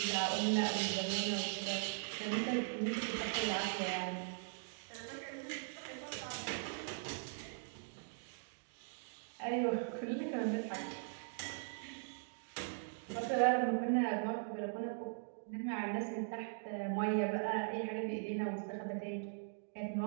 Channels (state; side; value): silent; left; digital silence